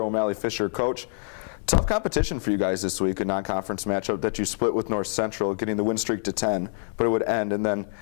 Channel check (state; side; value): silent; right; 61 dB below the other